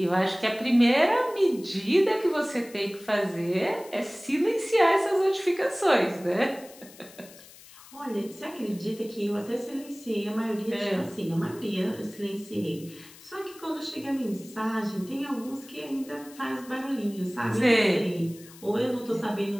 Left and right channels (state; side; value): noise; left; hiss, 21 dB below the sound